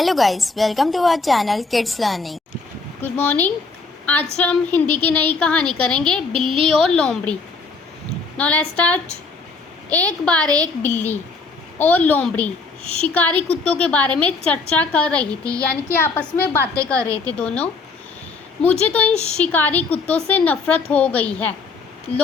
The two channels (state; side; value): quieter; right; 4.3 dB